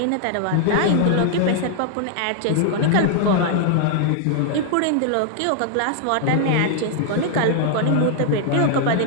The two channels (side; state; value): both; different; correlation -0.01